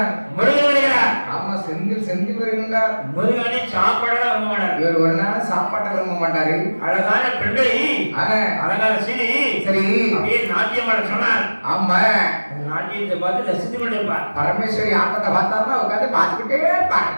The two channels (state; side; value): inverted; both; correlation -1.00